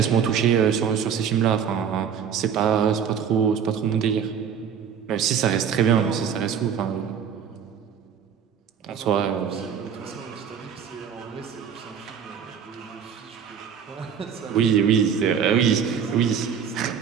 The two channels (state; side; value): quieter; left; 7.7 dB